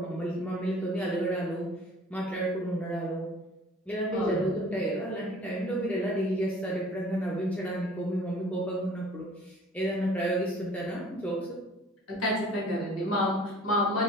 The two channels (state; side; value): normal; both; correlation 0.50